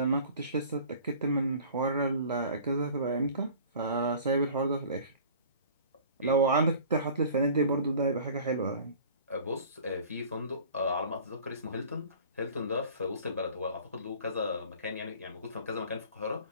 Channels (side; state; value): both; inverted; correlation -0.46